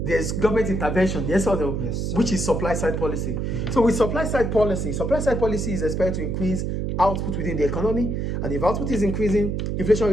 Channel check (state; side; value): noise; right; hum, 1 dB below the sound